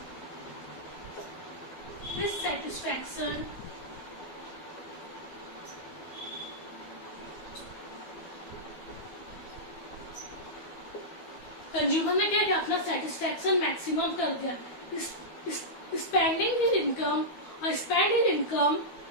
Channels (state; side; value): late; right; 12 ms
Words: his satisfaction consumer ने क्या किया? अपना सेटिस्फेक्शन मैक्सिमम कर दिया। स्पेंडिंग हिज इनकम और स्पेंड हिज इनकम,